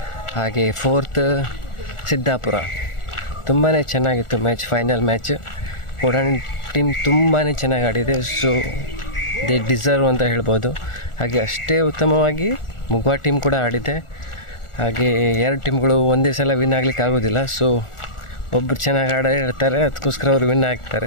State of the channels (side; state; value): right; late; 1.4 ms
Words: ಹಾಗೆ ಫೋರ್ತ್ ಸಿದ್ದಾಪುರ. ತುಂಬಾ ಚೆನ್ನಾಗಿತ್ತು ಮ್ಯಾಚ್, ಫೈನಲ್ ಮ್ಯಾಚ್. ಕೊಡಾನಿ ಟೀಮ್ ತುಂಬಾ ಚೆನ್ನಾಗಿ ಆಡಿದೆ, ಸೊ ದೇ ಡಿಸರ್ವ್ ಅಂತ ಹೇಳ್ಬೋದು. ಹಾಗೆ ಅಷ್ಟೇ ಉತ್ತಮವಾಗಿ ಮುಗುವ ಟೀಮ್ ಕೂಡ ಆಡಿದೆ. ಹಾಗೆ ಎರಡು ಟೀಮ್ಗಳು ಒಂದೇ ಸಲ ವಿನ್ ಆಗ್ಲಿಕ್ಕೆ ಆಗೋದಿಲ್ಲ, ಸೊ ಒಬ್ಬರು ಚೆನ್ನಾಗಿ ಇರ್ತಾರೆ, ಅದಕ್ಕೋಸ್ಕರ ಅವರು ವಿನ್ ಆಗ್ತಾರೆ